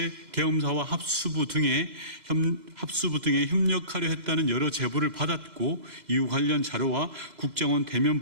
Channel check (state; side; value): late; left; 2.0 ms